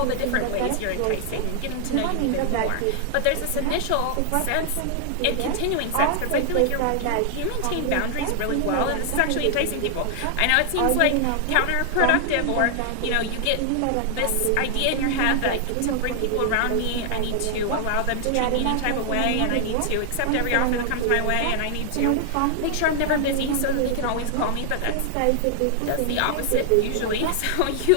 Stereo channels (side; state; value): both; different; correlation 0.00